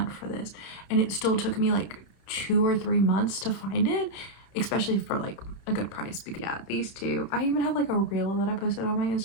for this, and it still took me like 2 or 3 months to find it, especially for like a good price. But yeah, these 2, I even have like a reel that I posted on my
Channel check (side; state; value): right; late; 31 ms